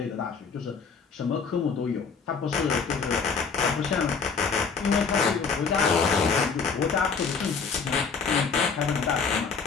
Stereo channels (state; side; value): quieter; right; 5.5 dB